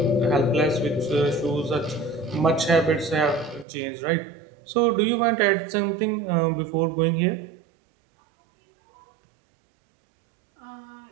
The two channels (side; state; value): left; drops out; at 3.7 s